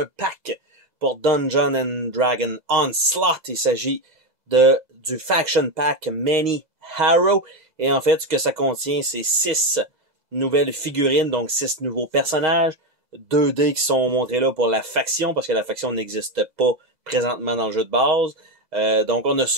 pack pour Dungeons and Dragons Onslaught. Il s'agit du Faction Pack Many Harrow. Et en fait, ce que ça contient, c'est 6 nouvelles figurines, donc 6 nouveaux personnages. 2 dés qui sont montrés là pour la faction, parce que la faction n'existe pas présentement dans le jeu de base. Donc on a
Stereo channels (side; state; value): left; late; 2.0 ms